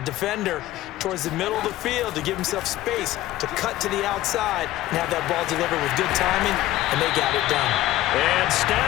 towards the middle of the field to give himself space to cut to the outside and have that ball delivered with good timing, and they got it done. And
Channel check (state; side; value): quieter; right; 15.4 dB